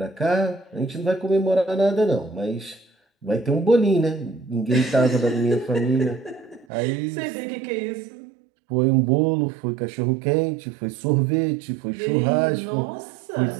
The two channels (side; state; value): left; drops out; at 6.7 s